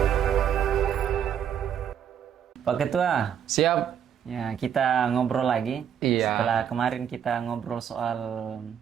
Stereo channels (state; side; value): quieter; left; 8.8 dB